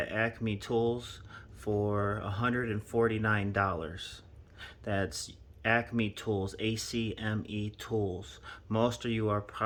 Acme Tools for $149. That's Acme Tools, ACME Tools. Most of you are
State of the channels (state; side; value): identical; both; correlation 1.00